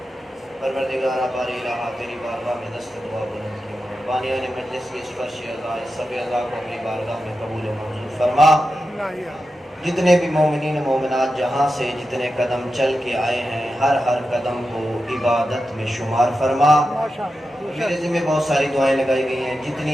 پروردگارہ باری الہ تیری بارگاہ میں دست دعا بلند کی، بانیان مجلس کی سفرش اعضاء سب اعضاء کو اپنی بارگاہ میں قبول و منظور فرما۔ جتنے بھی مومنین و مومنات جہاں سے جتنے قدم چل کے آئے ہیں، ہر قدم کو عبادت میں شمار فرما۔ میرے ذمہ بہت ساری دعائیں لگائی گئی ہیں،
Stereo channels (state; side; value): normal; both; correlation 0.90